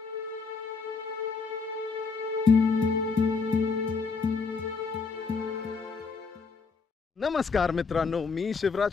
नमस्कार मित्रांनो, मी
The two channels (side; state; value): right; quieter; 4.8 dB